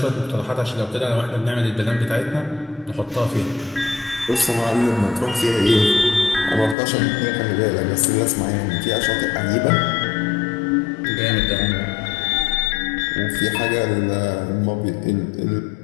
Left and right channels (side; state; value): right; drops out; at 6.8 s